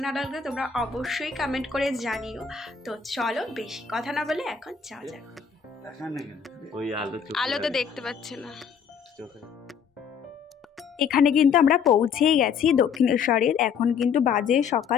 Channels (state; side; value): quieter; right; 6.8 dB